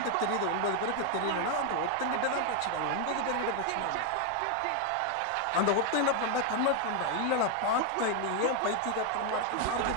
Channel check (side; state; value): both; different; correlation 0.01